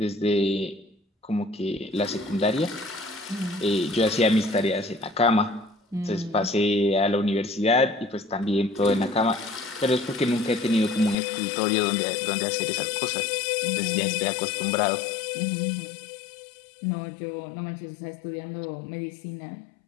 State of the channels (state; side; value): drops out; right; at 11.2 s